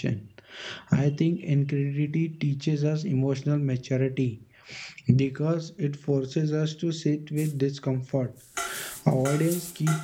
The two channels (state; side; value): identical; both; correlation 1.00